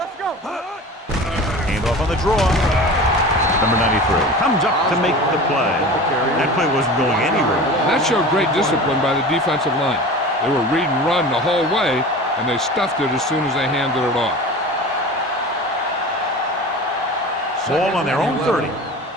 go. Hand off on the draw. Number 93 comes up to make the play. That play wasn't going anywhere. That showed great discipline by the defensive line. They were read and run the whole way, and they stuffed it as soon as they handed it off. Ball on their own 30.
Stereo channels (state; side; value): normal; both; correlation 0.35